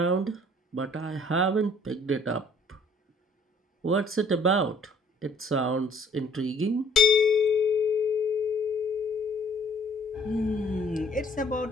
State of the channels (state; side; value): normal; both; correlation 0.59